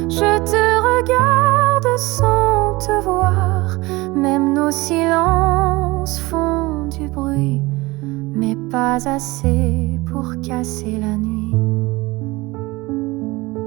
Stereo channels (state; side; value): quieter; left; 21.7 dB